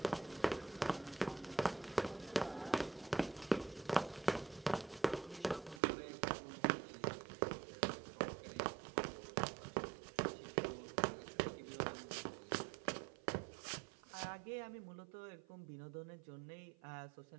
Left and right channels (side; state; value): left; drops out; at 5.8 s